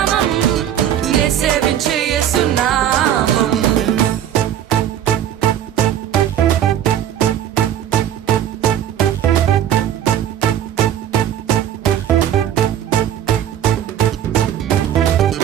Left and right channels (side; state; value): left; quieter; 10.6 dB